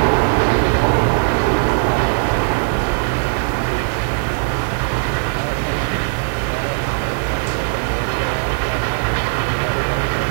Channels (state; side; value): silent; left; digital silence